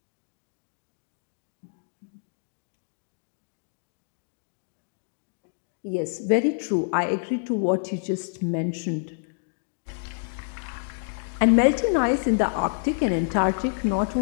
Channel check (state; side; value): silent; right; digital silence